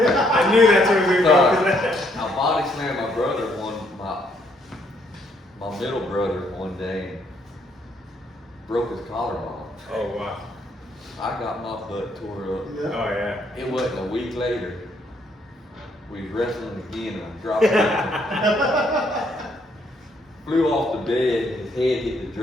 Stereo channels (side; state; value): both; normal; correlation 0.70